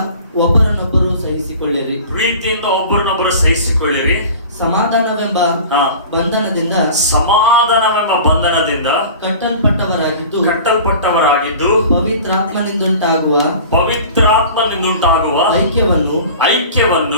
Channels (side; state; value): both; inverted; correlation -0.40